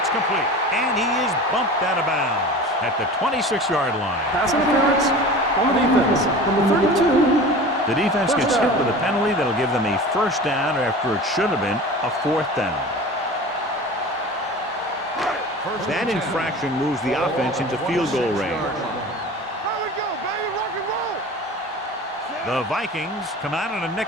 complete. And he is bumped out of bounds at the 26-yard line. Pass interference on the defense. Number 32. The defense gets hit with a penalty that'll give them a 1st down after it should have been a 4th down. That infraction moves the offense into field goal range. Here we go, baby. Rock and roll. The Vikings come out in a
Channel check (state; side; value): normal; both; correlation 0.36